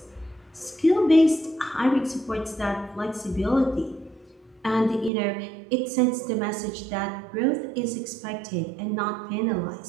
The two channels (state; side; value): drops out; left; at 5.1 s